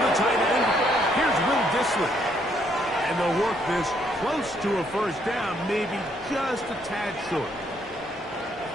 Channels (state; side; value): normal; both; correlation 0.70